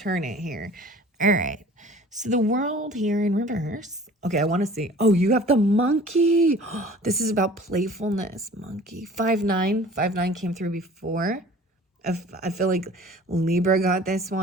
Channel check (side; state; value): both; normal; correlation 0.47